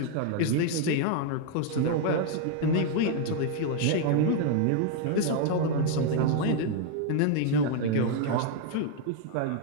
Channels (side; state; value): both; different; correlation 0.00